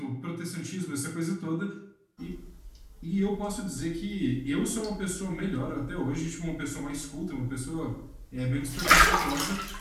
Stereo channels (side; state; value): both; identical; correlation 1.00